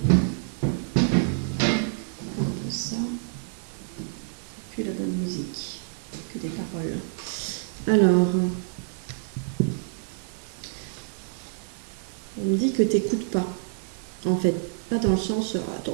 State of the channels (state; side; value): silent; left; digital silence